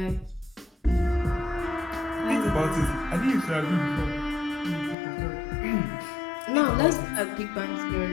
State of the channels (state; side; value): drops out; right; at 5.0 s